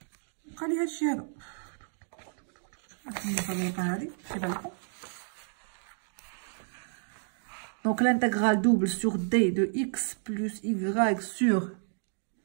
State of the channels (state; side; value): silent; left; 57 dB below the other